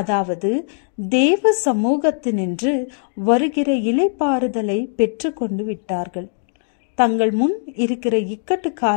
தேவ சமூகத்தினின்று வருகிற இளைப்பாறுதலை பெற்று கொண்டு விட்டார்கள். தங்கள் முன் இருக்கிற இக்கட்டு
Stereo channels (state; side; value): silent; right; digital silence